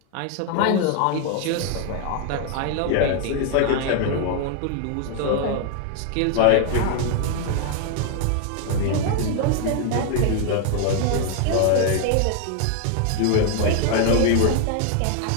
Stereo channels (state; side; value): different; both; correlation 0.00